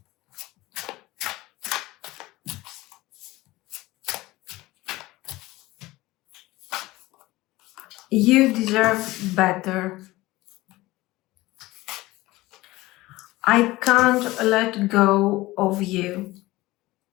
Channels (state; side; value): quieter; right; 19.1 dB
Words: You deserve better. I can't let go of you.